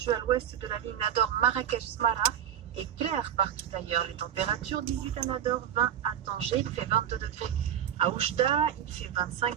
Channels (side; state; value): left; quieter; 9.8 dB